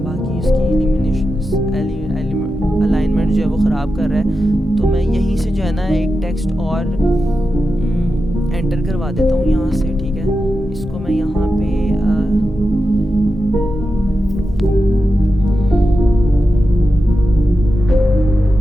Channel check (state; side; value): normal; both; correlation 0.90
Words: बाकी इसकी अलाइनमेंट जो है वो ख़राब कर रहा है, तो मैं यहीं से जो है ना एक टेक्स्ट और एंटर करवा देता हूँ यहाँ से, ठीक है। इसको मैं यहाँ पे